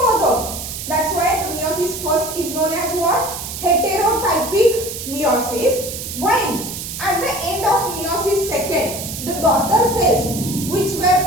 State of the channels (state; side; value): noise; right; hiss, 7 dB below the sound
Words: That's why the meiosis first is known as what? Heterotypic meiosis, while at the end of meiosis second, the daughter cells which